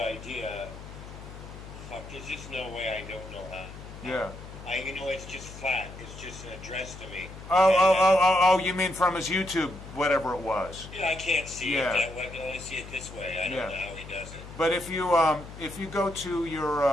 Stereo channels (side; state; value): left; noise; hum, 14 dB below the sound